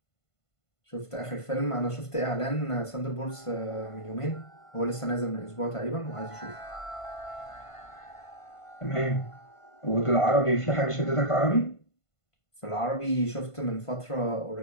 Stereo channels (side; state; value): right; late; 1.5 ms